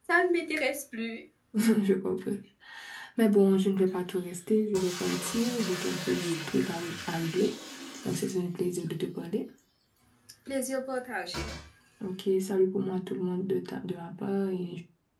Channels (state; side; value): identical; both; correlation 1.00